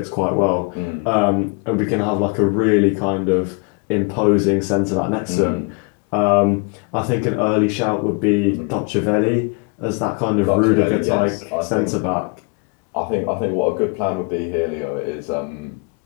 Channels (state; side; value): quieter; right; 34.2 dB